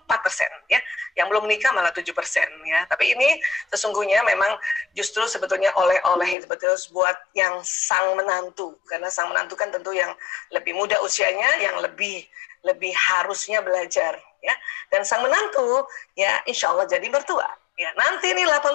ya, yang belum menikah malah 7% ya. Tapi ini sesungguhnya memang justru sebetulnya oleh-oleh betul buat yang sang menantu, karena sang menantu kan tentu yang lebih muda usianya, yang lebih harusnya belajar ya, dan sang menantu ya insya Allah jadi mertua. Ya, nanti ini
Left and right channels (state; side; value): drops out; right; at 6.4 s